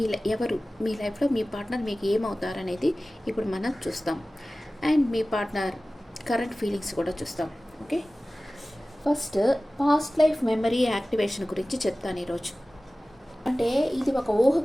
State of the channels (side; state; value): both; normal; correlation 0.97